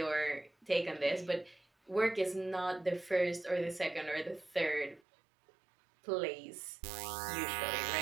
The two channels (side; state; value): left; drops out; at 5.0 s